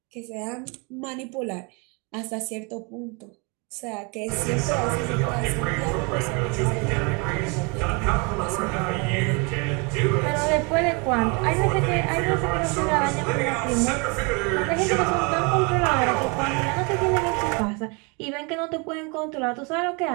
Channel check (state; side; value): quieter; left; 31.2 dB